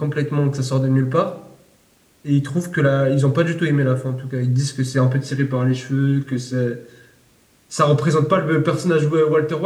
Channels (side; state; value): both; identical; correlation 1.00